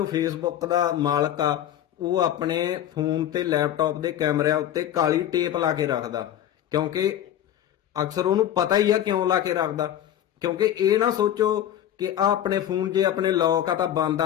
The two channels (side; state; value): right; quieter; 11.2 dB